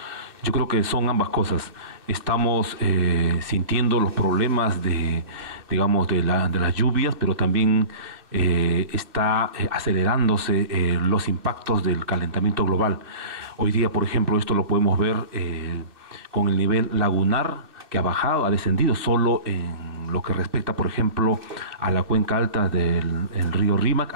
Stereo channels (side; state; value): left; late; 2.6 ms